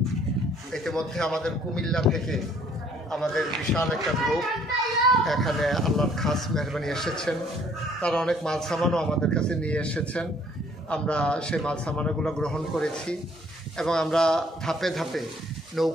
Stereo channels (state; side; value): normal; both; correlation 0.61